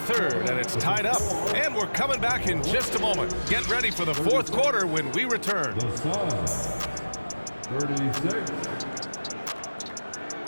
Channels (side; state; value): both; inverted; correlation -1.00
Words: third, and it's tied up. And we're coming back in just a moment. Get ready for the fourth quarter when we return. The Suns, 36.